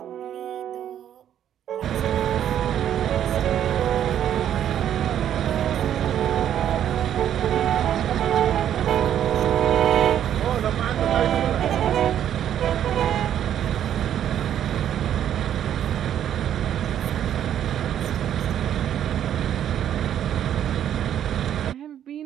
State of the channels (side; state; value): left; quieter; 10.3 dB